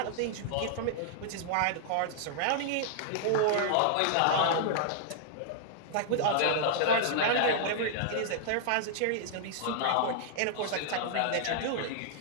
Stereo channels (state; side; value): different; both; correlation -0.01